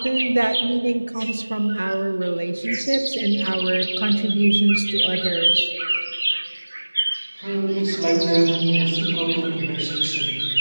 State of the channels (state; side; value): inverted; both; correlation -1.00